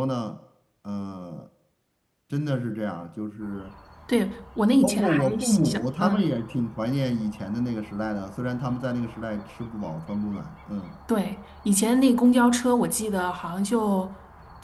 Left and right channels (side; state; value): both; identical; correlation 1.00